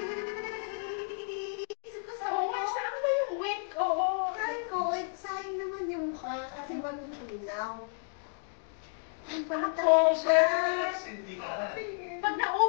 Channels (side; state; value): right; silent; digital silence